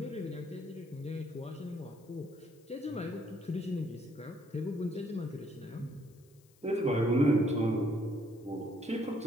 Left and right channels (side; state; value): left; noise; hiss, 30 dB below the sound